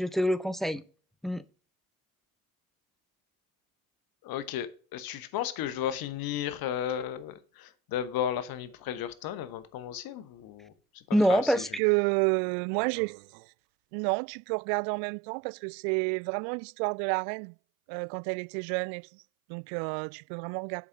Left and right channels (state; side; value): drops out; left; at 11.8 s